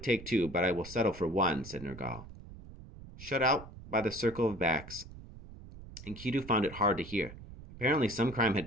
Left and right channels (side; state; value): right; noise; rumble, 15 dB below the sound